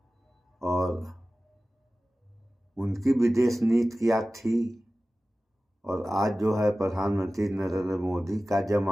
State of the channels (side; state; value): both; normal; correlation 0.96